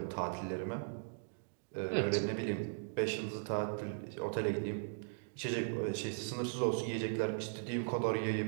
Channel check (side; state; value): left; silent; digital silence